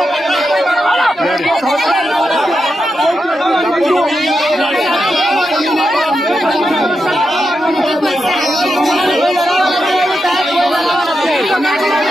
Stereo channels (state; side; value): normal; both; correlation 0.87